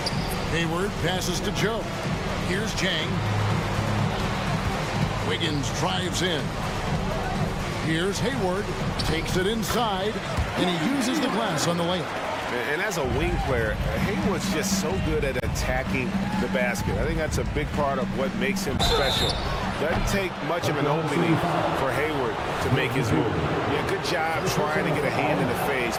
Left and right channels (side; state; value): both; identical; correlation 1.00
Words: Hayward passes to Joe. Here's Jang. Wiggins drives in. Here's Hayward. Takes it inside. And he uses the glass on the layup. And as a wing player, Hayward's just so good at attacking the basket. I think that's a big part of what makes him special. Doesn't take much of an opening for Hayward to make his move. Yeah, good job trying to get a hand in the face,